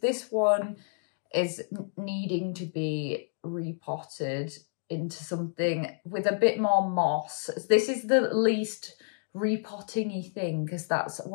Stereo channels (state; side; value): silent; right; digital silence